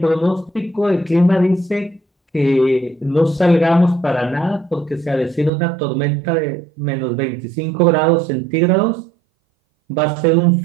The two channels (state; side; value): drops out; left; at 5.5 s